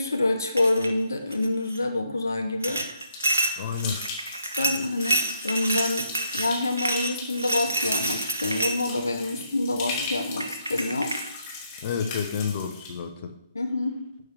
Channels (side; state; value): both; inverted; correlation -0.75